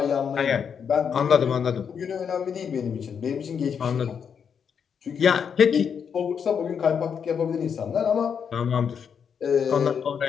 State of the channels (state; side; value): quieter; right; 7.1 dB